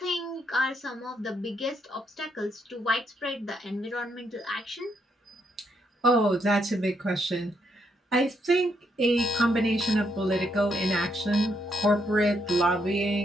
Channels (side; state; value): both; normal; correlation 0.76